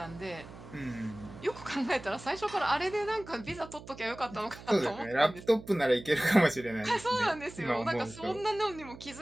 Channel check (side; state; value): right; noise; hum, 16 dB below the sound